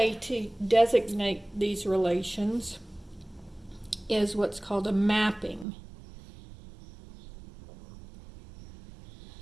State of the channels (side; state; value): left; drops out; at 5.7 s